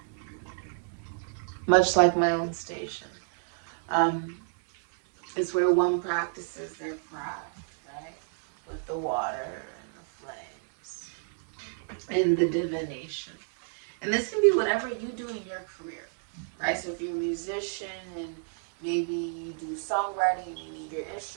Much like my own station. It's where one practices their craft, right? With the water and the flames and the divination. And this can be whatever you do in your career, right? So if you're a musician and maybe you do songwriting and you need your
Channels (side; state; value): left; silent; digital silence